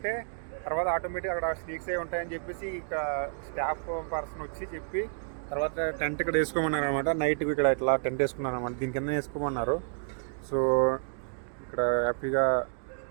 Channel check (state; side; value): silent; left; digital silence